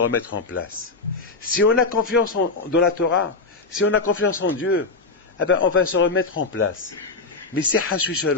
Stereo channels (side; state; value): right; quieter; 3.9 dB